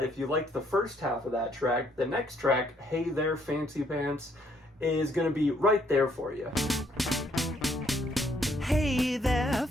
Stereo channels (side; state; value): both; normal; correlation 0.68